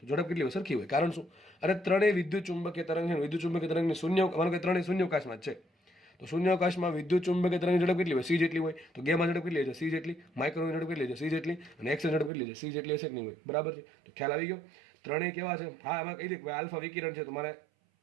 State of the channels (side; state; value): left; drops out; at 12.3 s